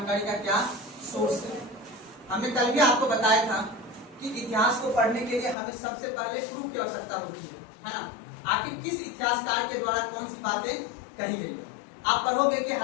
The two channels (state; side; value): drops out; right; at 5.6 s